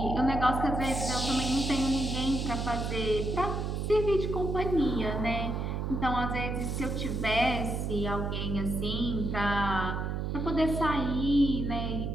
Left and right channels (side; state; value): right; noise; hum, 2 dB below the sound